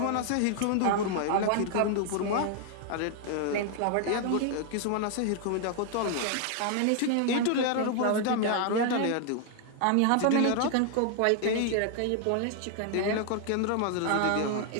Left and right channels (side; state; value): both; different; correlation 0.00